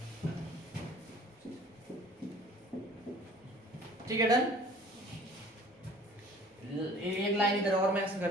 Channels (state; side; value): normal; both; correlation 0.50